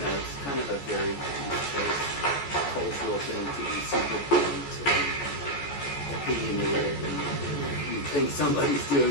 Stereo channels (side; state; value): right; late; 14 ms